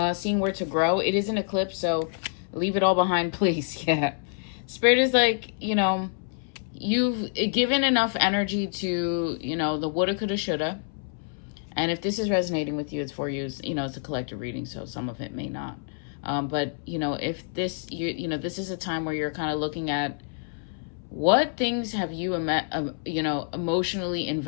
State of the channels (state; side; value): silent; right; 60 dB below the other